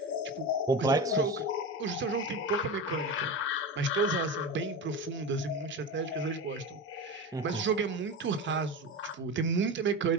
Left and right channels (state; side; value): normal; both; correlation 0.24